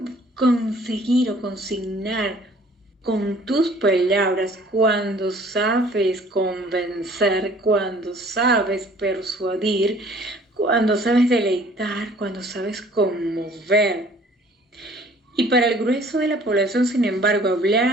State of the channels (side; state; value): both; normal; correlation 0.54